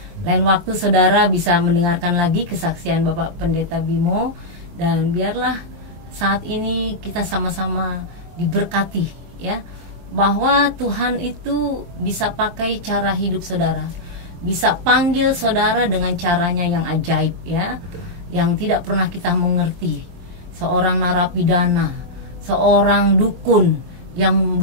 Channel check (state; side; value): late; left; 24 ms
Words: Lain waktu saudara bisa mendengarkan lagi kesaksian Bapak Pendeta Bimo, dan biarlah saat ini kita sama-sama diberkati ya, bahwa Tuhan itu bisa pakai cara hidup saudara, bisa panggil saudara dengan caranya yang ajaib ya, yang tidak pernah kita mengerti. Seorang narapidana, seorang dukun yang